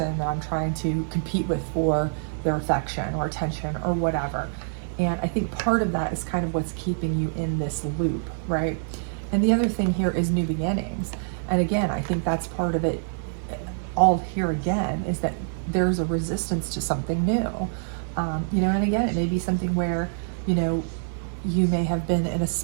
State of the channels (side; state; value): left; silent; 61 dB below the other